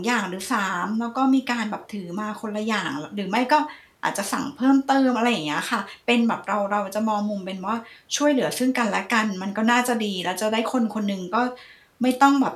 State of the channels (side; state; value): both; identical; correlation 1.00